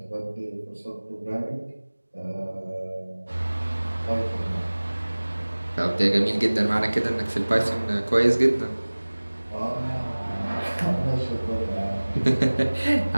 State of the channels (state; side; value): inverted; both; correlation -1.00